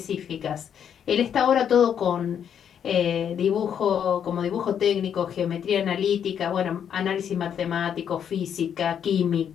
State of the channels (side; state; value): right; quieter; 8.5 dB